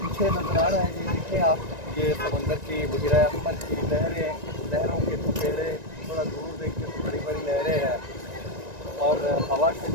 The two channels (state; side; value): late; left; 1.9 ms